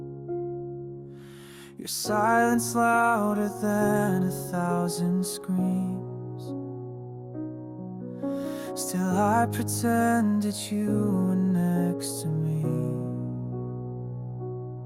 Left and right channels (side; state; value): both; identical; correlation 1.00